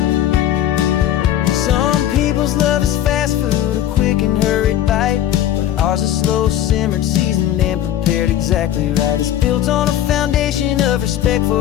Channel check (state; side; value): quieter; right; 11.7 dB